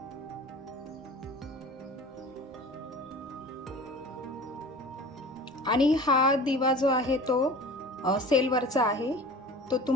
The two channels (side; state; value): both; normal; correlation 0.41